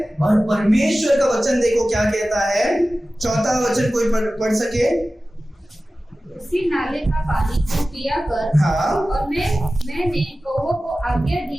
और परमेश्वर का वचन देखो क्या कहता है, चौथा वचन कोई पढ़ सके। उसी नाले का पानी को पिया कर। हाँ। और मैंने कौवों को आज्ञा दी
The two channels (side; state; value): both; normal; correlation 0.96